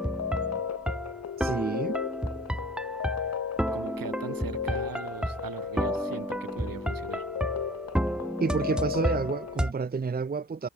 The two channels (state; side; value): normal; both; correlation 0.47